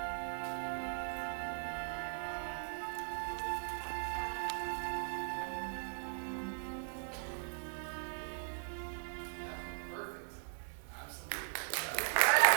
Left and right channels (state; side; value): silent; left; digital silence